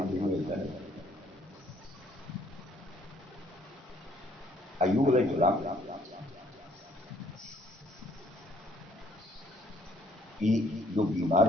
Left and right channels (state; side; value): normal; both; correlation 0.63